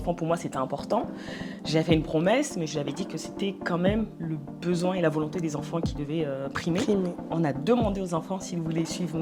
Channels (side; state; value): both; identical; correlation 1.00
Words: pour moi, c'était important. J'ai fait une promesse, mais je lui avais dit que c'était quand même le besoin et la volonté des enfants qui devaient primer. On a demandé aux enfants s'ils voulaient suivre